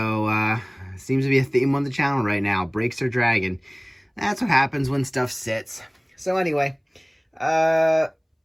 seems to be a theme on the channel right now. Brakes are dragging. That's what happens when stuff sits. So anyway,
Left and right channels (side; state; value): both; identical; correlation 1.00